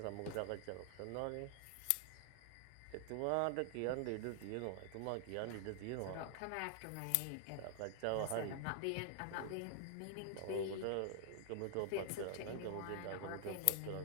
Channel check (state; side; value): different; both; correlation -0.01